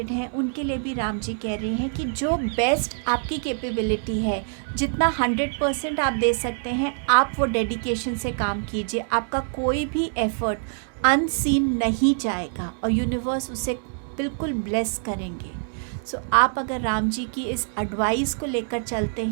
हैं उनके लिए भी राम जी कह रहे हैं कि जो बेस्ट आपकी कैपेबिलिटी है, जितना 100% आप दे सकते हैं, आप वो डेडिकेशन से काम कीजिए। आपका कोई भी एफर्ट अनसीन नहीं जाएगा और यूनिवर्स उसे बिल्कुल ब्लेस करेंगे। सो आप अगर राम जी की इस एडवाइस को लेकर चलते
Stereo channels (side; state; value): left; silent; digital silence